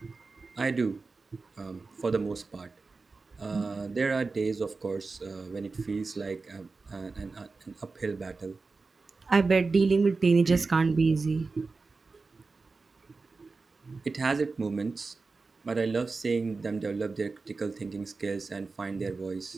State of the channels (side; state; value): left; quieter; 4.0 dB